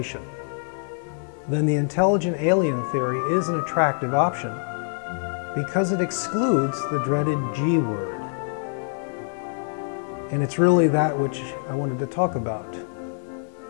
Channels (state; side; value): silent; right; digital silence